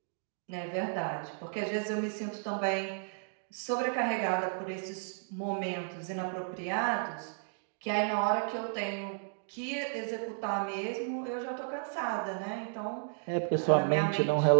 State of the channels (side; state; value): left; silent; digital silence